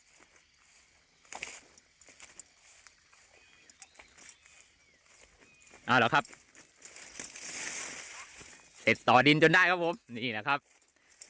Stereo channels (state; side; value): identical; both; correlation 1.00